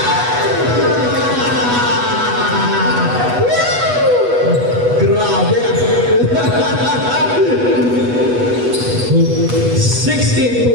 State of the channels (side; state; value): left; late; 8.2 ms